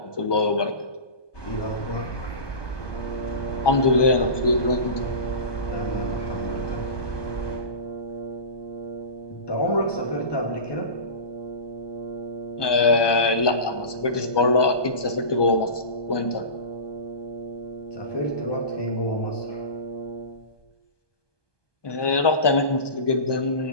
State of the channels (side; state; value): right; late; 1.2 ms